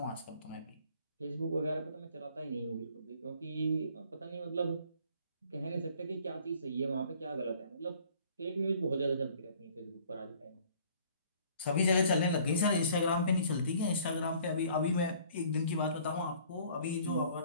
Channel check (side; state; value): both; inverted; correlation -0.55